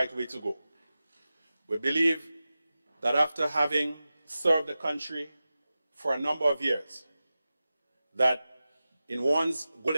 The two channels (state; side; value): inverted; both; correlation -0.94